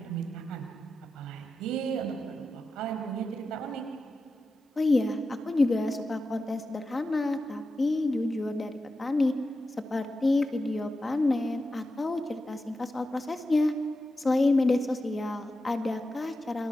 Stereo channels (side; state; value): both; normal; correlation 0.91